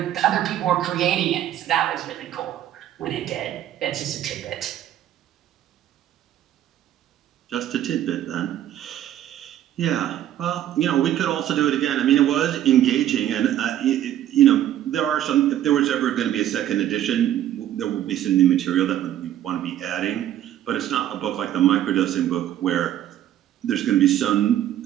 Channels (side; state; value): left; quieter; 11.8 dB